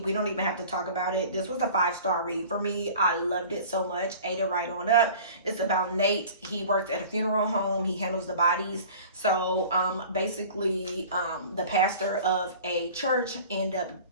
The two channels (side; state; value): both; inverted; correlation -0.43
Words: don't even have to talk about it. This was a 5-star read for me. I loved it so much. Ate it right on up. It's about Nate. He works at a funeral home. He handles the bodies. So basically the pastor of a church ended up